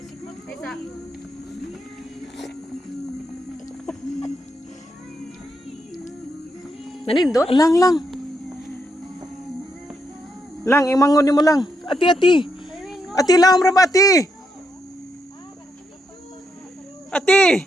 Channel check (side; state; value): both; normal; correlation 0.80